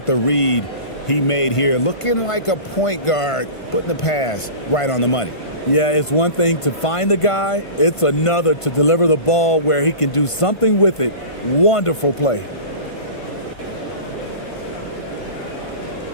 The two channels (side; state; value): right; late; 1.5 ms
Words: the read he made here? Looking like a point guard, putting the pass right on the money. Yeah, it's one thing to find the guy. It's another to deliver the ball where he can do something with it. Wonderful play.